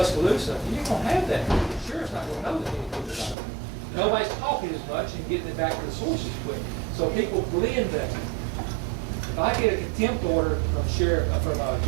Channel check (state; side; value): drops out; left; at 3.4 s